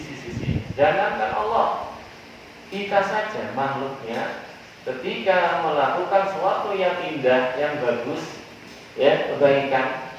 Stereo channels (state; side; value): identical; both; correlation 1.00